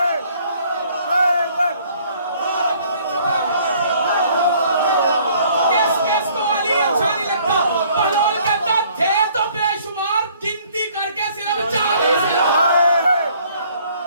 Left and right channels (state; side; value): inverted; both; correlation -0.59